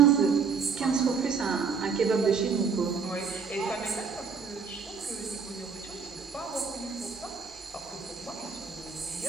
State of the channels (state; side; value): quieter; left; 5.7 dB